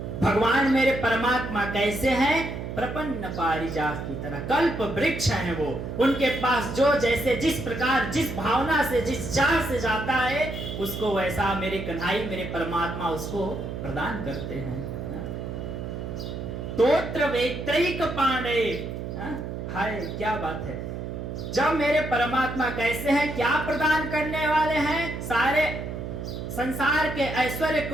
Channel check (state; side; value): noise; right; hum, 6 dB below the sound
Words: भगवान मेरे परमात्मा कैसे हैं? प्रपन्न पारिजात की तरह, कल्प वृक्ष हैं वो। उनके पास जो जैसे, जिस प्रकार, जिस भावना से, जिस चाह से जाता है, उसको वैसा मेरे कन्हैया, मेरे परमात्मा उसको प्रदान करते हैं। तोत्र वेत्रैक पांडे। हाय क्या बात है! जब मेरे परमात्मा कैसे हैं, क्या प्रदान करने वाले हैं? सारे संसार के ऐश्वर्य